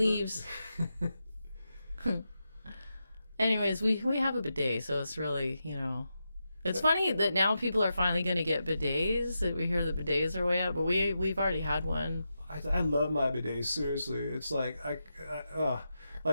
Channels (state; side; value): inverted; both; correlation -0.88